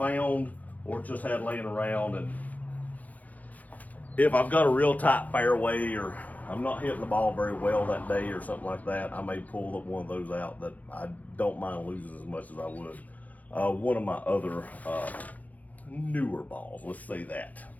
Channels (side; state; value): right; late; 0.077 ms